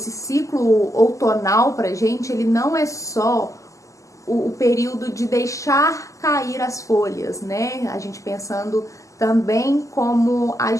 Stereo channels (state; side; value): late; right; 0.16 ms